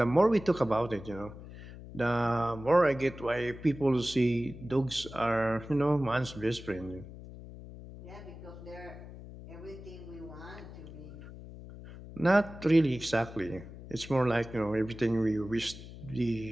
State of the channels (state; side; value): noise; left; hum, 14 dB below the sound